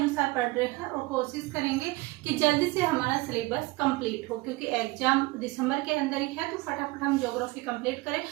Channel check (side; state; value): left; quieter; 22.1 dB